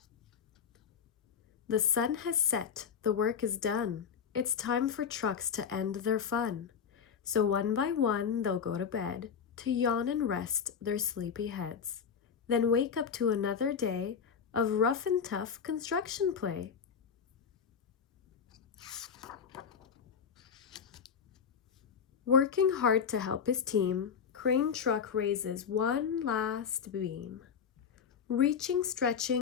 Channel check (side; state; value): right; quieter; 6.9 dB